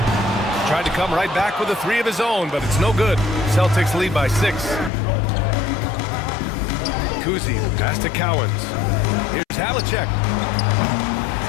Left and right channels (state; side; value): drops out; right; at 4.9 s